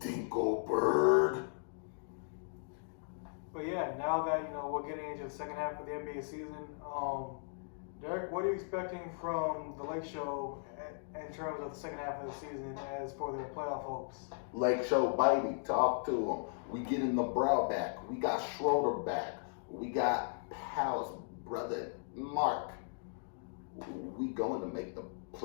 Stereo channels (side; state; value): right; silent; digital silence